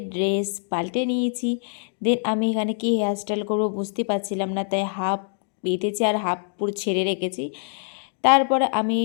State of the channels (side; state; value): right; silent; 62 dB below the other